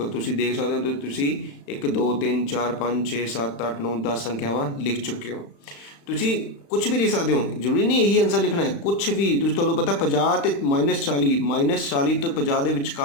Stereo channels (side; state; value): right; late; 35 ms